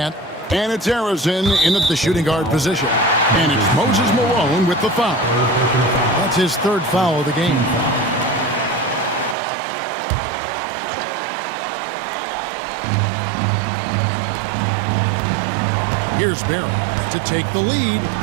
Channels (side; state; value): left; drops out; at 9.3 s